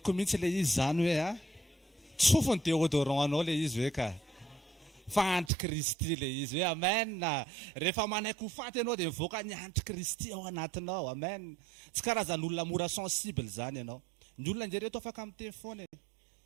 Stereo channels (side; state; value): left; drops out; at 5.5 s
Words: mihitsy le izy zany hoe tsofony déodorant anao le izy hoe ka fa antikristy le izy hoe amen. Rehefa manaiky ho faty ianao dia mivoaka ny antikristy ao anatinao. Amen. Tsy karazan'olona mora sensible zany ianao. Ny olona njereto afaka miteny foana,